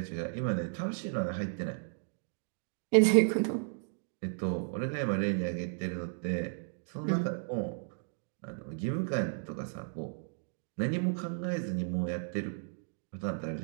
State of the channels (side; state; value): left; silent; digital silence